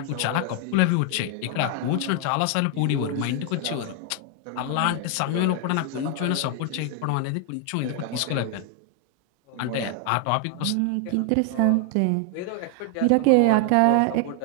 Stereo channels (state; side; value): different; both; correlation 0.00